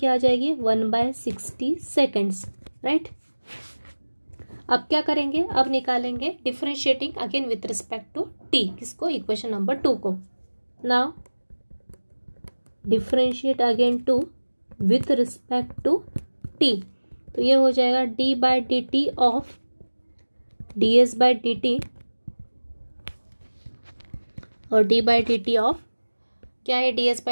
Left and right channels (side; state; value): both; inverted; correlation -1.00